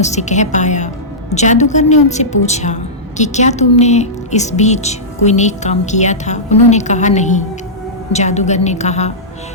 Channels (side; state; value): both; normal; correlation -0.15